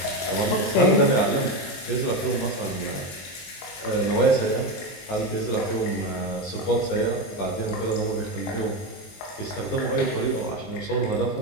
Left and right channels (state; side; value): late; right; 21 ms